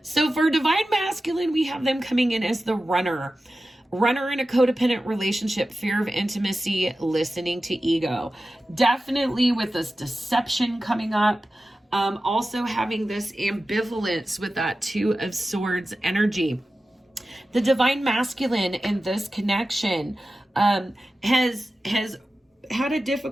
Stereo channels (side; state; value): both; normal; correlation 0.94